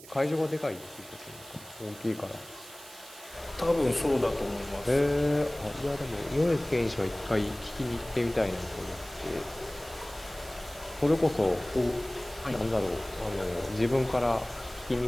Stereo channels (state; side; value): noise; right; hiss, 18 dB below the sound